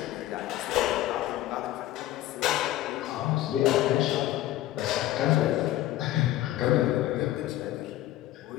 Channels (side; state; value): right; quieter; 14.5 dB